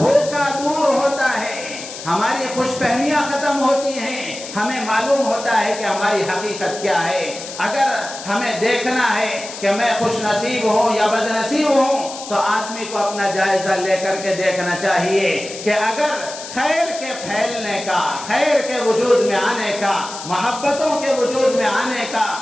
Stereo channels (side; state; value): left; noise; hiss, 11 dB below the sound